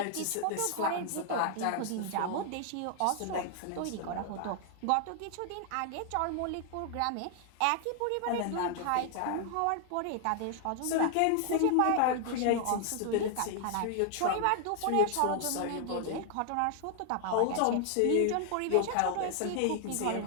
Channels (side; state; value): both; different; correlation 0.00